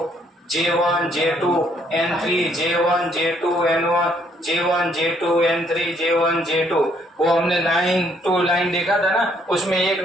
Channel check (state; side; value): normal; both; correlation 0.68